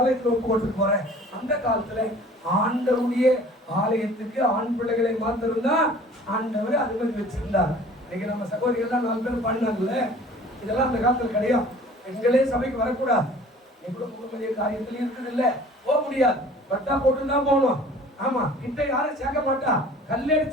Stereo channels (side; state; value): both; normal; correlation 0.48